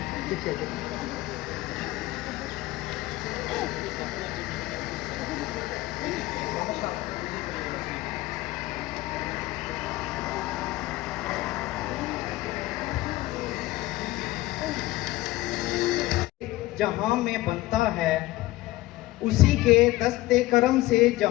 जहां में बनता है उसी के दस्ते करम से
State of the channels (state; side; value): quieter; right; 18.1 dB